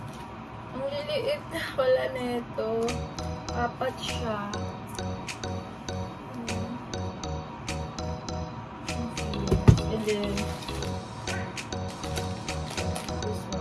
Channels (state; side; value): identical; both; correlation 1.00